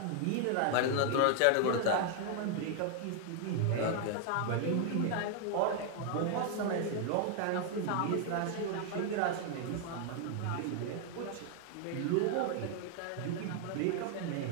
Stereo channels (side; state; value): both; different; correlation 0.00